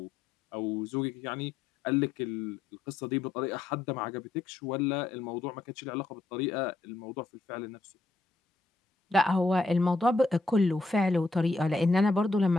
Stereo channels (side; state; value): right; quieter; 3.4 dB